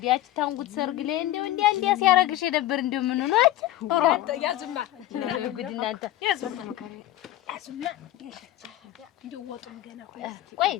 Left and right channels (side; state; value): right; quieter; 14.6 dB